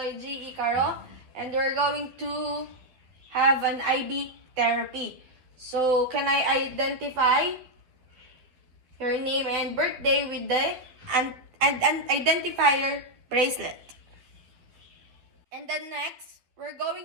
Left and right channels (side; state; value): left; late; 12 ms